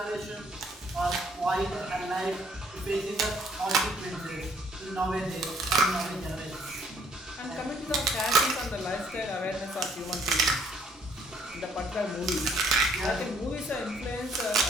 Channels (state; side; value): normal; both; correlation 0.63